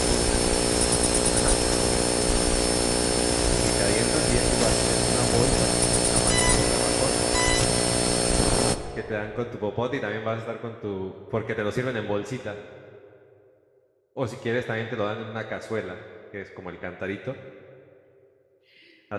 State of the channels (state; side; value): identical; both; correlation 1.00